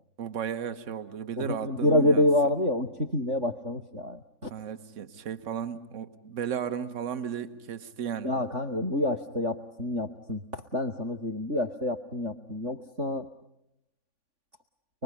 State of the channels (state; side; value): late; left; 3.6 ms